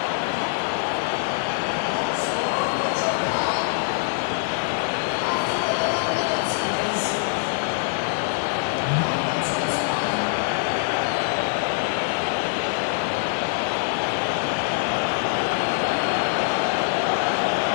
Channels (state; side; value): silent; right; digital silence